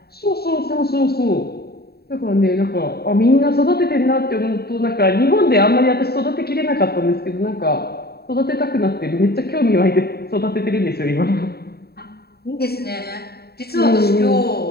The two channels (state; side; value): late; right; 0.46 ms